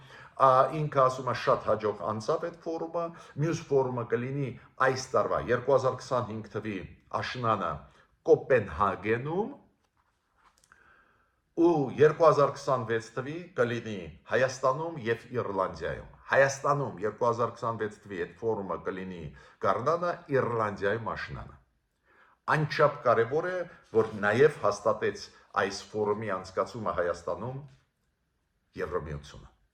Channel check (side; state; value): both; identical; correlation 1.00